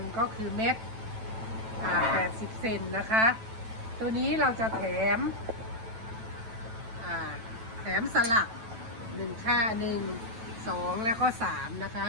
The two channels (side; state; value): left; late; 9.1 ms